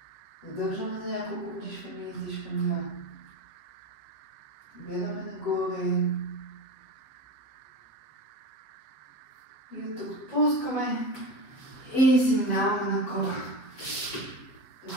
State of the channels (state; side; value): late; right; 7.5 ms